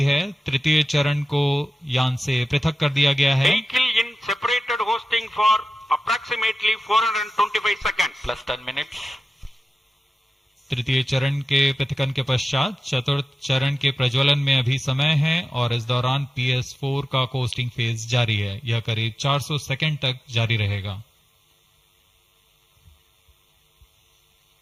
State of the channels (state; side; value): normal; both; correlation 0.94